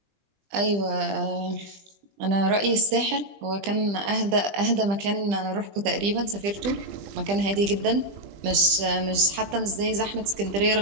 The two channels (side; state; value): left; late; 20 ms